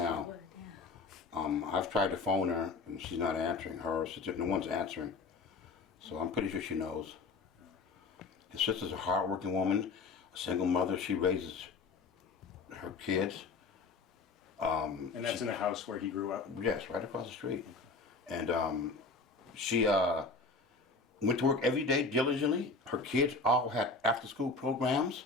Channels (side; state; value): right; quieter; 4.0 dB